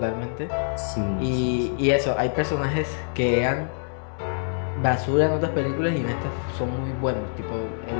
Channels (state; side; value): silent; right; digital silence